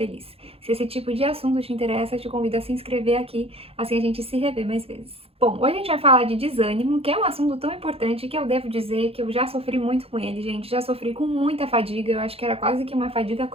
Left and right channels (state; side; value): late; left; 0.28 ms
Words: Se esse tipo de assunto te interessa, eu te convido a se inscrever aqui, assim a gente se revê mais vezes. Bom, hoje a gente vai falar de desânimo, que é um assunto tão importante que eu devo dizer que eu já sofri muito com ele, gente. Já sofri com muita fadiga, eu acho que era quase que uma fadiga